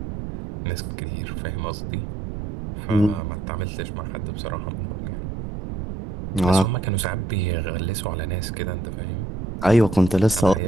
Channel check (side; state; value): right; noise; rumble, 6 dB below the sound